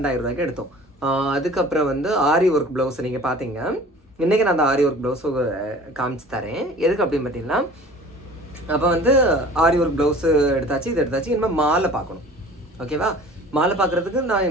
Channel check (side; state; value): both; normal; correlation 0.45